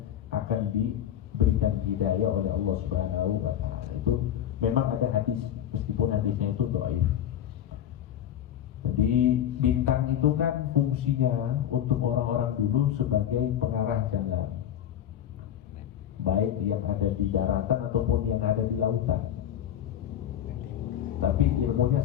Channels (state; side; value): quieter; right; 10.5 dB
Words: akan diberikan hidayah oleh Allah Subhanahu wa taala. Itu memang ada hadis, meskipun hadisnya itu dhaif. Jadi bintang itu kan fungsinya untuk orang-orang dulu sebagai pengarah jalan, baik yang ada di daratan ataupun yang ada di lautan. Tapi ilmunya